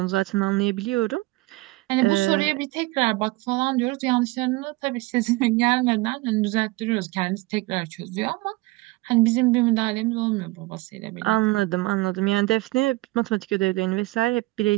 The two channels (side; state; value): left; quieter; 21.6 dB